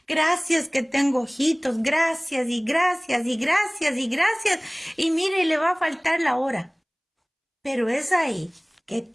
gracias que tengo ojitos, gracias, y mire, le va a faltar la hora, pero es ahí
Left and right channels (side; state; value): both; identical; correlation 1.00